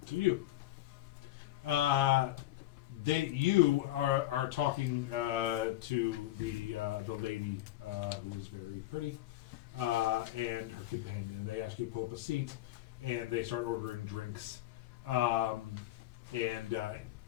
To you. You are talking to the lady who is very pretty and her companion, and they ask you to pull up a seat, and they start ordering drinks, and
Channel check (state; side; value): quieter; right; 15.2 dB